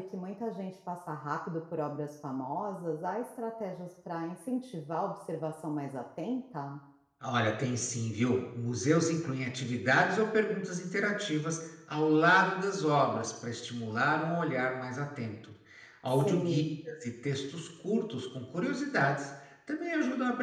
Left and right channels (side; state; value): both; identical; correlation 1.00